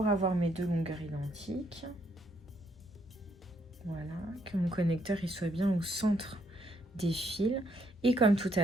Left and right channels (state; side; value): normal; both; correlation 0.72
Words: avoir mes 2 longueurs identiques. Voilà, que mon connecteur il soit bien au centre des fils. Et comme tout